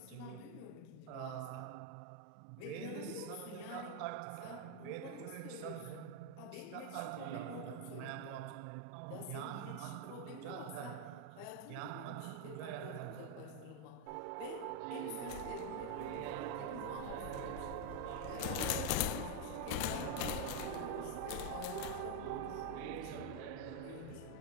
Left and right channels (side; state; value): both; different; correlation 0.01